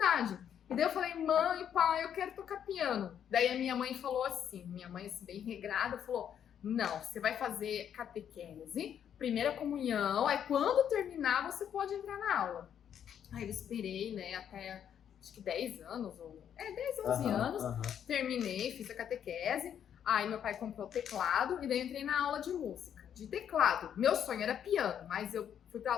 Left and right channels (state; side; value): quieter; right; 9.1 dB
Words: E daí eu falei, mãe, pai, eu quero tocar piano. Daí a minha mãe falou assim, minha mãe assim, bem regrada, falou, não, você vai fazer catequese, primeira comunhão, aí quando terminar você pode entrar na aula. Aí eu esperei, né, até acho que 10 anos, 10, 11 anos, terminei, fiz a catequese, aí meu pai comprou o teclado e daí entrei na aula de música, de teclado. Meu sonho era piano, mas eu fui pra